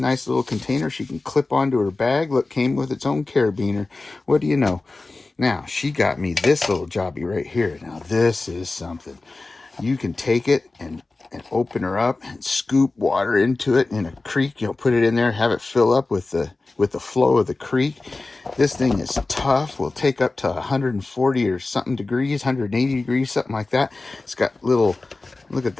little container she can clip onto her bag. Look, came with its own carabiner. What do you know? Now, she got me this little Jobbie right here. Now, this is something. You can take it and open her up and scoop water into it in a creek. Put it in there, have it fill up with the flow of the creek. This thing is tough. Will take up to 140 or something degrees, 180 degrees, something like that. It's got little, look at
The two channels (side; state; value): right; quieter; 3.4 dB